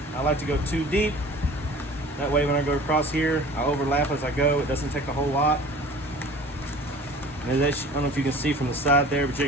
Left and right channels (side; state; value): both; normal; correlation 0.44